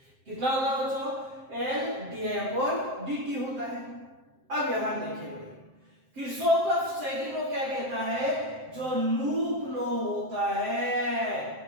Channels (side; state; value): left; late; 7.6 ms